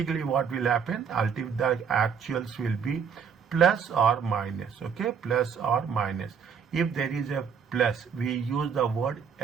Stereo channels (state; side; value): quieter; left; 6.8 dB